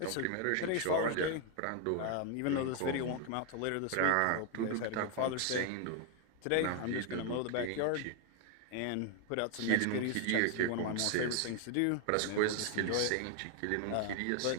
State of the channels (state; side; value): different; both; correlation 0.00